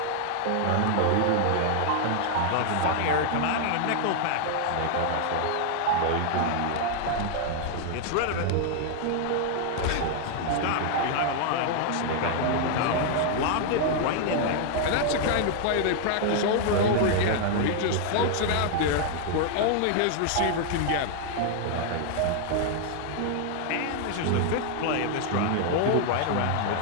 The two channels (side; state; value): both; different; correlation 0.00